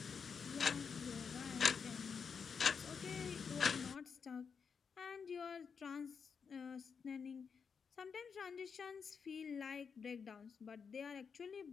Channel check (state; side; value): quieter; right; 6.1 dB